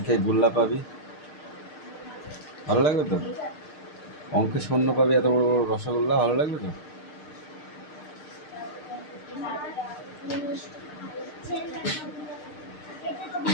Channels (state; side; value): late; right; 6.6 ms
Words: গোল্লা পাবি, ভালো লাগবে তো? অঙ্কে শূন্য পাবি, এত বড় বড় রসগোল্লা, ভালো লাগবে তো?